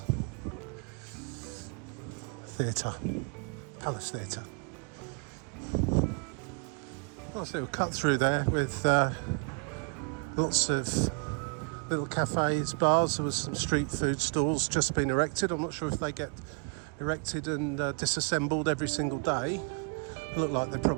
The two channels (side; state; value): left; quieter; 36.7 dB